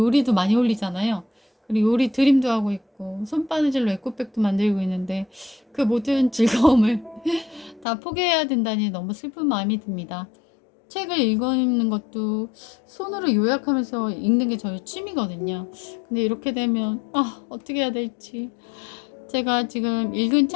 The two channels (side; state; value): right; drops out; at 7.9 s